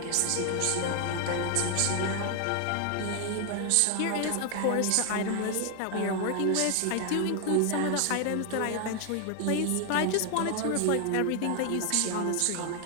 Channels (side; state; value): both; different; correlation 0.00